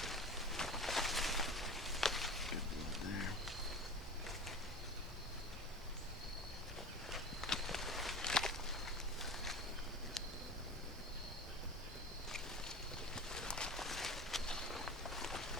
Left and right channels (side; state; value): both; normal; correlation 0.35